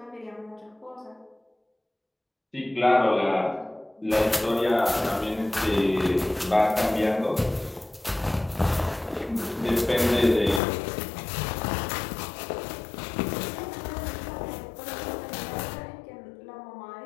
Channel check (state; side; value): drops out; right; at 10.6 s